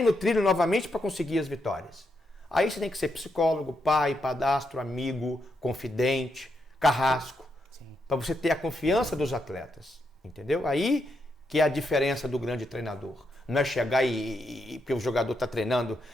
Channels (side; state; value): both; normal; correlation 0.81